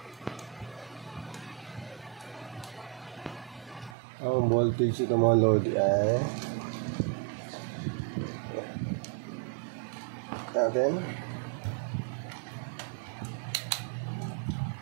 Ang voltage ito mga lodi ay natin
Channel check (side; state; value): left; drops out; at 4.0 s